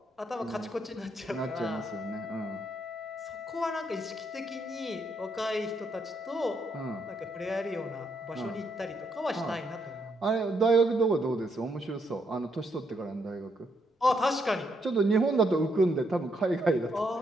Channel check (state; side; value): normal; both; correlation 0.76